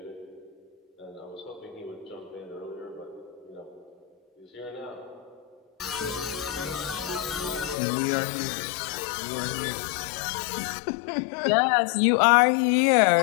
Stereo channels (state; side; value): drops out; right; at 7.8 s